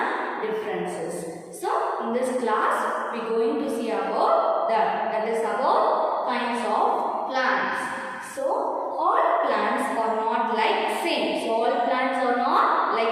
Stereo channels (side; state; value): both; identical; correlation 1.00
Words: differences. So in this class we are going to see about that is about kinds of plants. So all plants are not like same. So all plants are not